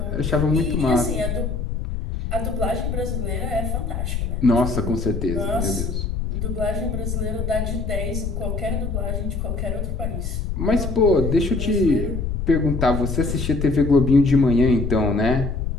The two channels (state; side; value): noise; left; rumble, 3 dB below the sound